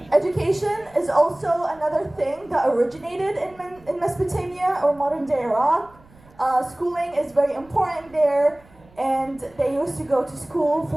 Education is also another thing that originated in Mesopotamia or modern day Iraq. Schooling is very important there, and they used to go to school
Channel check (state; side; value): noise; right; rumble, 27 dB below the sound